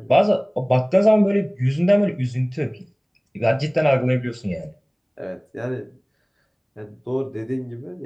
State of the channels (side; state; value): both; identical; correlation 1.00